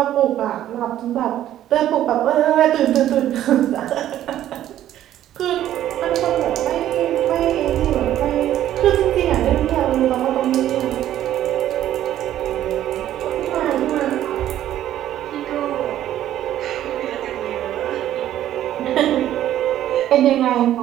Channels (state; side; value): quieter; left; 12.3 dB